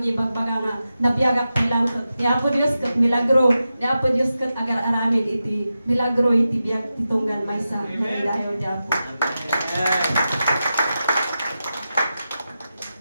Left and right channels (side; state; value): both; inverted; correlation -0.91